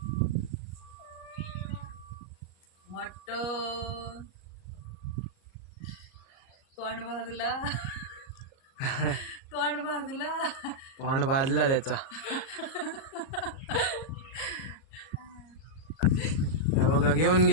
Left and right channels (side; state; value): right; late; 38 ms